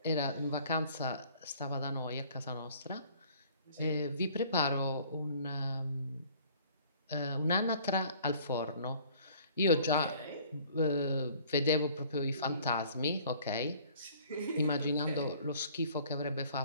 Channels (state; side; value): inverted; both; correlation -0.54